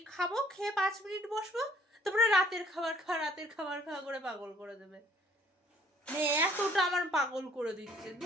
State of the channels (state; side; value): normal; both; correlation 0.60